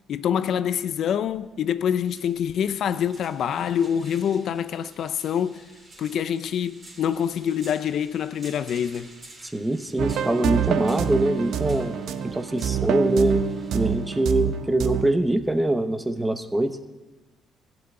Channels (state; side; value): normal; both; correlation 0.74